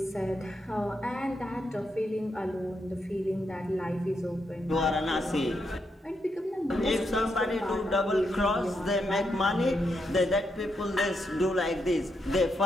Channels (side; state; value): both; normal; correlation 0.81